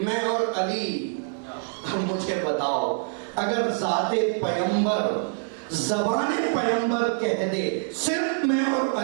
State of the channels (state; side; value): silent; left; digital silence